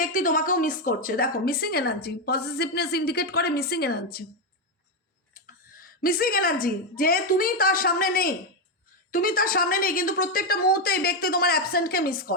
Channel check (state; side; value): normal; both; correlation 0.06